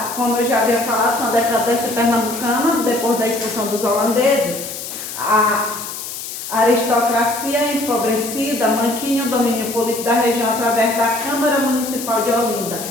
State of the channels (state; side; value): noise; left; hiss, 8 dB below the sound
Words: como eu já havia falado, com a decadência pernambucana, depois da expulsão dos holandeses, a aristocracia empobrecida mantinha o domínio político da região através da Câmara Municipal de Olinda,